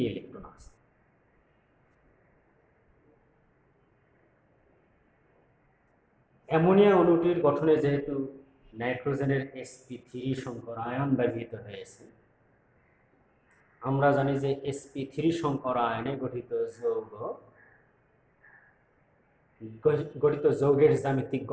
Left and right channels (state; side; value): identical; both; correlation 1.00